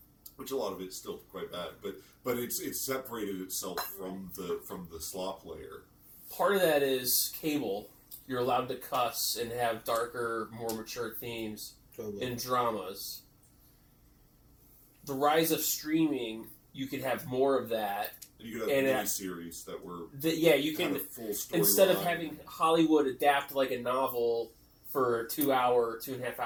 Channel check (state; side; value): identical; both; correlation 1.00